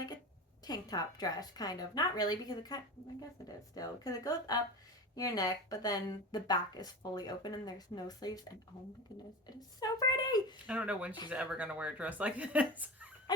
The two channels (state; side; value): normal; both; correlation 0.29